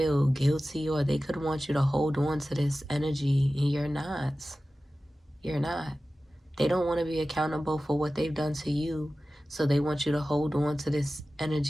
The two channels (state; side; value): normal; both; correlation 0.95